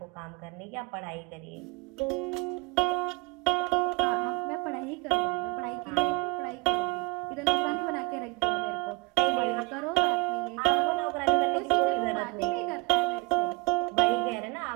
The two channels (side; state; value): left; quieter; 25.0 dB